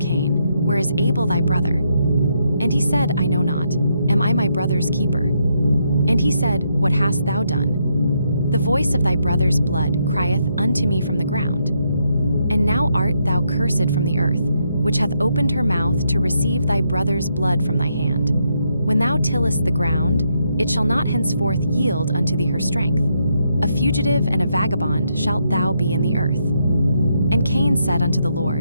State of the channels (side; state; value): both; inverted; correlation -0.78